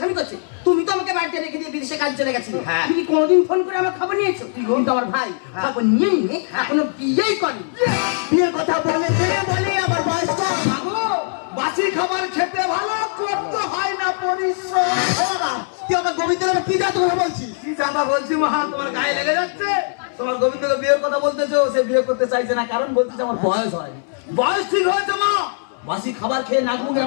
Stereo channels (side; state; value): right; silent; 65 dB below the other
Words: করছে। তুমি তো আমাকে বাড়িতে রেখে দিয়ে বিদেশে কাজ চলে গেছিলে। তুমি কি কোনোদিন ফোন করে আমার খবর নিয়েছো? কিন্তু আমার ভাই খবর নিয়ে নিয়ে এখনো বিয়েই করেনি। বিয়ের কথা বলে বলে আবার বয়স কম। বাসি খাবার খেতে ভালো, করতে হয় না পরিশ্রম। তুই আমার গোবিন্দের কি জাত কথা বলছিস? কি জাতা বলছি মা, তোমার গায়ে লেগে যাচ্ছে। তোমার গোবিন্দকে বিয়ের কথা বলতেছো, সে বিয়ে করতে চাইছে না, কারণ বলতেছে আমার বয়স হয়নি। বয়স ঠিক হয়েছে মা, বাসি খাবার খেয়ে নাক মুখ